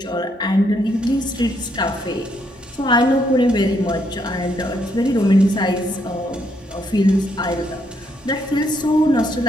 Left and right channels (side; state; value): both; normal; correlation 0.74